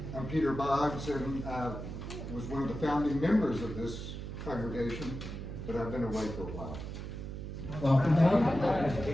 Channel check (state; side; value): noise; right; hum, 7 dB below the sound